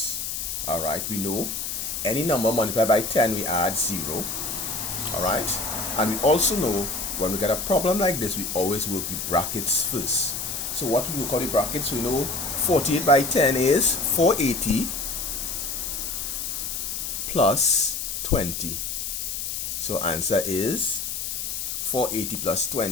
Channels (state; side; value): noise; left; hiss, 4 dB below the sound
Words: Alright, we know any number multiplied by 10, we add 0. Alright? And we also know when we get a problem like this, we always work the brackets first. So what we will call the brackets, we know 48 by 10 is 480 plus 20. So answer is 480 plus